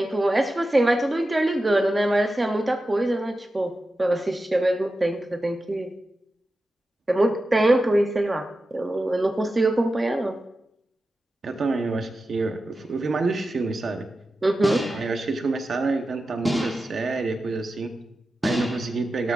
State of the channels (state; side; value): normal; both; correlation 0.92